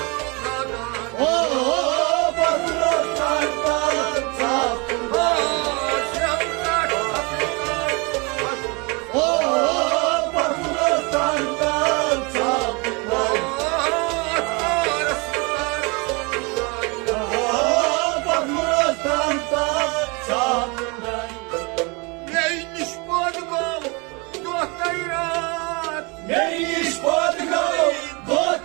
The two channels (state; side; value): quieter; left; 29.1 dB